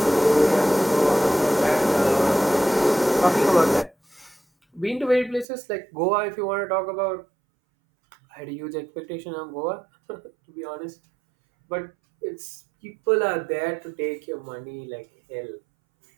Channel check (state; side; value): drops out; left; at 5.5 s